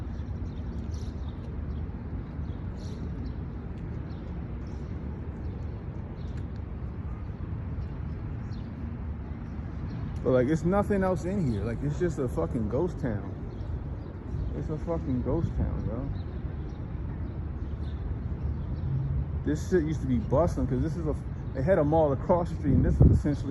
But like, it's nothing else in here. Like, it's just a fucking ghost town. It's a fucking ghost town, bro. This shit used to be bustling because this is they had a mall across the street, and this is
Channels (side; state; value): both; identical; correlation 1.00